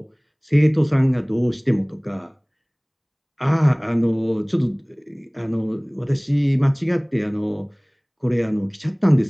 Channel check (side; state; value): both; identical; correlation 1.00